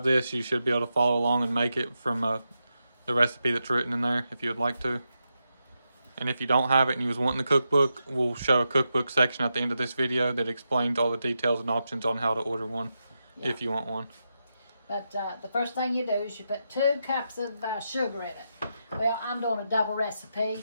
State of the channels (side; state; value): both; inverted; correlation -0.87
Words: this, you should be able to follow along and make it from the recipe that's written in there if you would like to. And if you don't have it and you was wanting the cookbook, we'll show a cookbook section at the end of this video that explains all the details and options on how to order one if you want one. But the first thing you do is you put 2 cups of sugar in it. Well, I'm doing a double recipe,